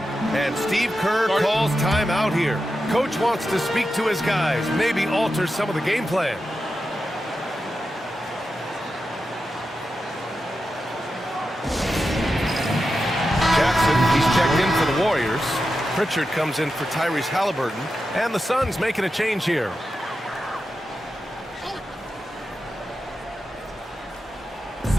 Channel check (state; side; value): normal; both; correlation 0.90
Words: And Steve Kerr calls timeout here. Coach wants to speak to his guys, maybe alter some of the game plan. in for the Warriors. Pritchard comes in for Tyrese Halliburton. And the Suns making a change here.